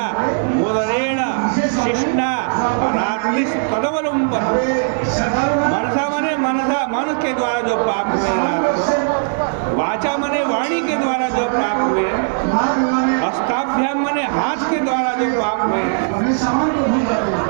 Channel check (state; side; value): silent; left; digital silence